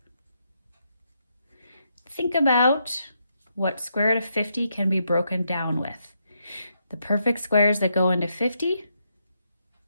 Think about what square root of 50 can be broken down with. The perfect squares that go into 50,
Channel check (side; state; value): both; inverted; correlation -0.80